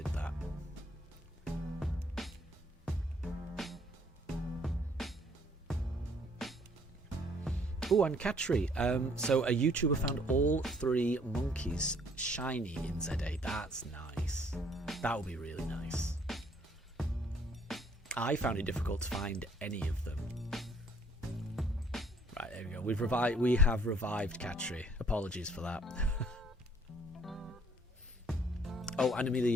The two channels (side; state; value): both; normal; correlation 0.62